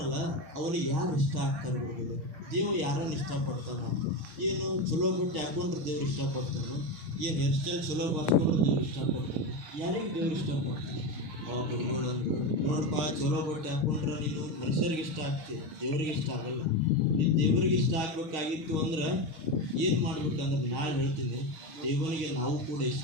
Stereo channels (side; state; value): left; late; 6.5 ms